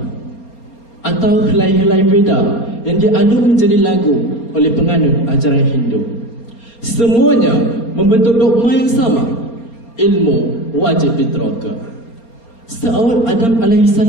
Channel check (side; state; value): right; late; 4.3 ms